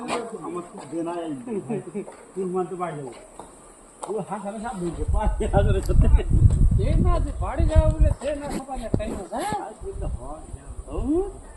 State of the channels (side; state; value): both; identical; correlation 1.00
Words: हमको देना है 3 मंथ बाड़ी जाओ वो हां सारे सब भूल के पास हां रे सत्य ये ना जे बाड़ी जाओ बोले थे ना खपा ने टाइम हो गया